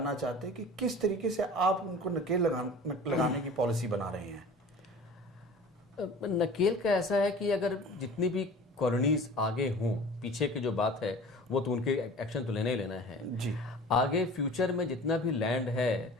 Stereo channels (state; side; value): normal; both; correlation 0.41